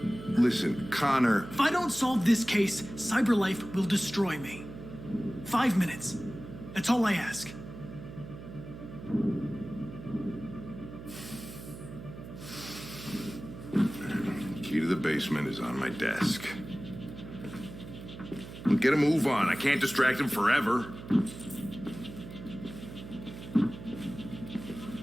Connor. If I don't solve this case, Cyberlife will destroy me. 5 minutes. That's all I ask. Key to the basement is on my desk. Get a move on. I can't distract him forever.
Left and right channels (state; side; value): noise; right; hum, 13 dB below the sound